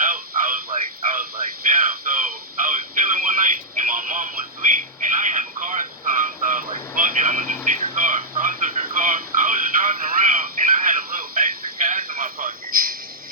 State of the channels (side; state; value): both; normal; correlation -0.10